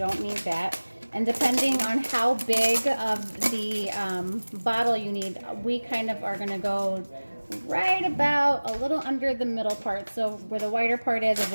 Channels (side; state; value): both; inverted; correlation -1.00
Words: need that. And depending on how big of the bottle you need, we kind of are going to go right about a little under the middle part. So where the wider part is, as